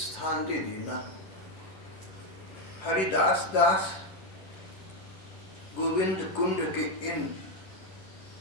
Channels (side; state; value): right; late; 11 ms